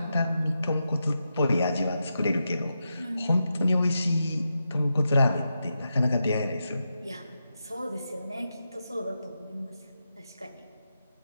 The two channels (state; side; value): inverted; both; correlation -0.87